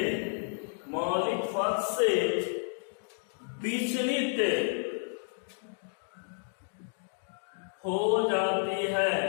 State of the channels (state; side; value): silent; right; digital silence